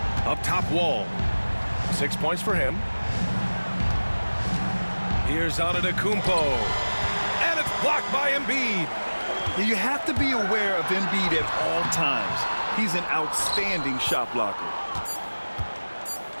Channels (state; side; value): inverted; both; correlation -1.00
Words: Up top, Wall. 6 points for him. Here's Antetokounmpo. And it's Blocked by Embiid. You have to be aware of Embiid at all times. He's an outstanding shot blocker.